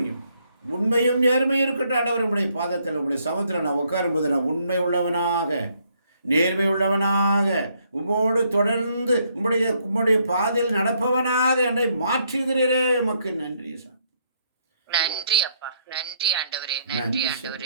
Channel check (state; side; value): inverted; both; correlation -0.71